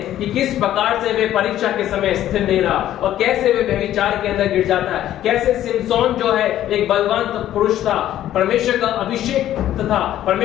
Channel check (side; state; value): right; quieter; 12.5 dB